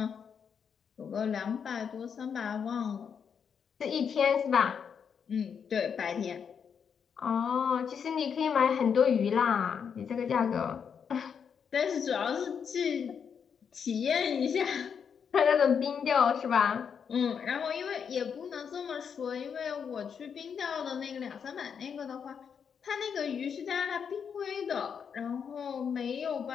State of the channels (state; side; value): quieter; right; 7.0 dB